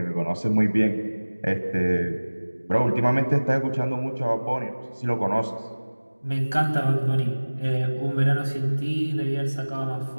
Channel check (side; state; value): both; inverted; correlation -1.00